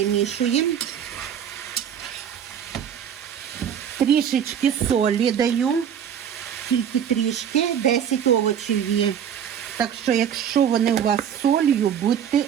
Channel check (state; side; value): quieter; left; 8.7 dB